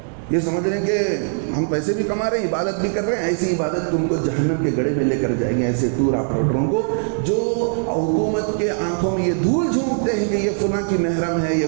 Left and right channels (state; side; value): silent; left; digital silence